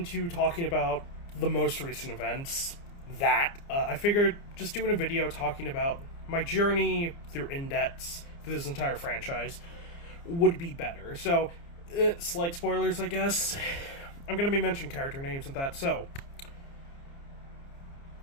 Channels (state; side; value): late; right; 29 ms